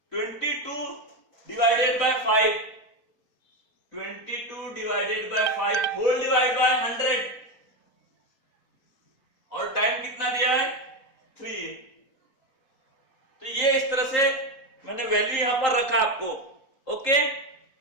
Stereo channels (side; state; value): right; late; 3.8 ms